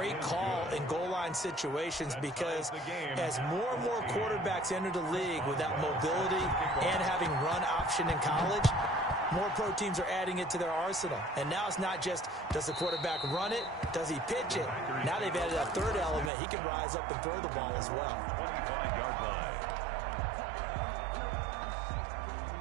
call in goal line situations because as more and more quarterbacks enter the league with that mobility and having run option in college, more pro teams are adding it to their arsenal. And now it's not just, does the quarterback run it? Does he pitch it? Now they've added a third element. He can rise up and throw the ball as well. 25-yard line.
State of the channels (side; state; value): left; drops out; at 16.3 s